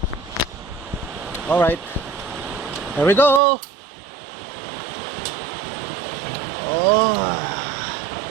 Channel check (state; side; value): drops out; left; at 3.4 s